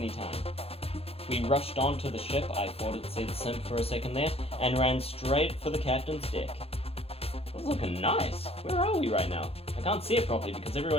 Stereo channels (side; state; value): right; late; 0.29 ms